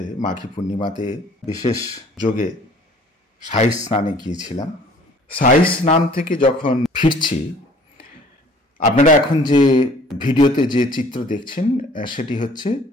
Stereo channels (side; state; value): both; normal; correlation 0.53